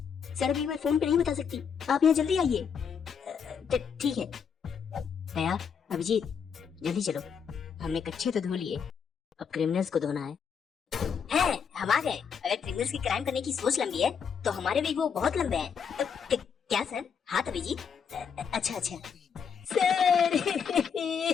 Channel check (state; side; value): quieter; right; 6.9 dB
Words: सर अभी मैं फोन पे नहीं बता सकती, आप यहाँ जल्दी आइए। ठीक है। दया, अभिजीत जल्दी चलो, हमने कच्चे तो धो लिए, अब क्रिमिनल्स को धोना है। हम आ गए। अगर क्रिमिनल्स की क्राइम करने की सोच लंबी है तो हमारे भी वो बहुत लंबे हैं। क्या सर? हाँ अभिजीत। अच्छा सर